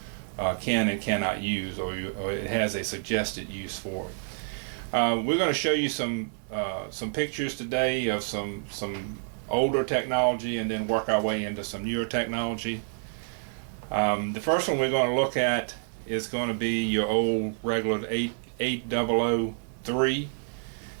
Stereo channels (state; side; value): silent; left; 59 dB below the other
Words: can and cannot use, or it has a suggested use for it. We're going to show you some pictures today of some older technology, and then work our way into some newer technology. The first one we're going to look at is going to be your old regular 8003,